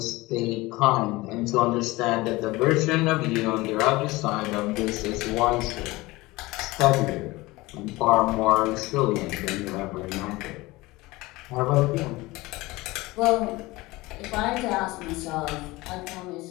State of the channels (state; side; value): quieter; right; 20.9 dB